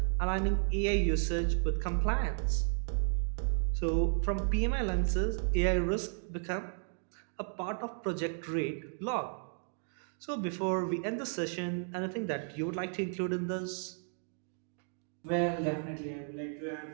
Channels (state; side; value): silent; left; 55 dB below the other